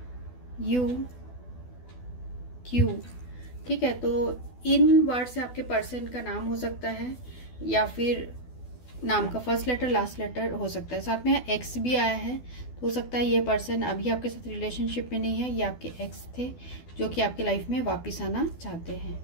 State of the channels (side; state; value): right; late; 12 ms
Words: U Q. ठीक है, तो इन वर्ड से आपके पर्सन का नाम हो सकता है या फिर नाम का फर्स्ट लेटर लास्ट लेटर हो सकता है। साथ में एक्स भी आया है, तो हो सकता है ये पर्सन अभी आपके साथ रिलेशनशिप में नहीं है, ये आपके एक्स थे जो कि आपके लाइफ में वापस आना चाहते हैं,